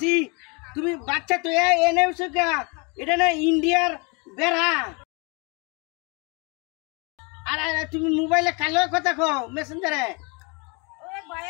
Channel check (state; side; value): quieter; right; 31.4 dB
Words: তুমি বাচ্চা তো এনেছো কা এটা না ইন্ডিয়ার বেড়া আর তুমি মোবাইলে কালো কথা কও মেসেঞ্জারে